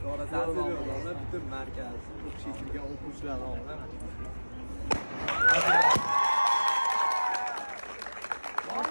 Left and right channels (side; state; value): both; inverted; correlation -1.00